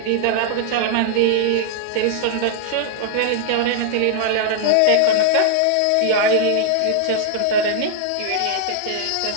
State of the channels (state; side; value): different; both; correlation -0.01